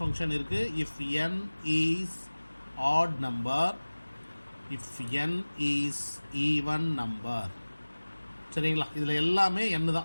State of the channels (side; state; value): both; inverted; correlation -1.00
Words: இருக்குது. If n is odd number, if n is even number. சரிங்களா? இதில் எல்லாமே n